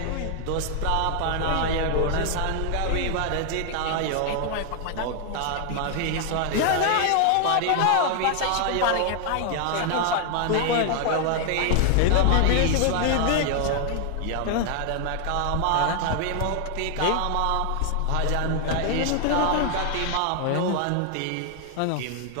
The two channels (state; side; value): different; both; correlation 0.00